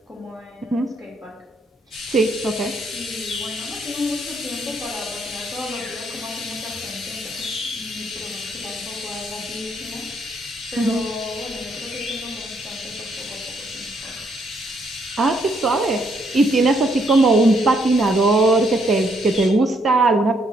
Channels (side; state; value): both; normal; correlation 0.72